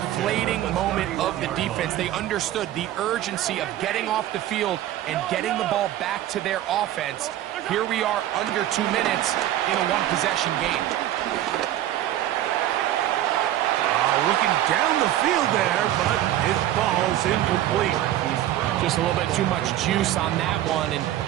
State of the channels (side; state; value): left; quieter; 13.0 dB